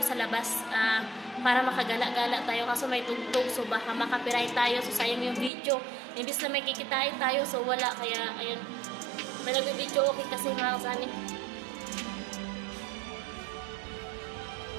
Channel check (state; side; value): drops out; left; at 5.5 s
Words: labas para makagala-gala tayo, kaso may tugtog, so baka makapiright tayo, so sayang yung video. Imbis na may kikitain tayo, so wala, kaya ayun, may nag-video okay kasi mga kasani.